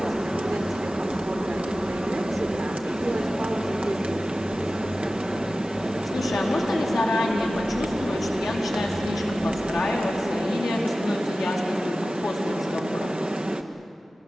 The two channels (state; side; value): normal; both; correlation 0.95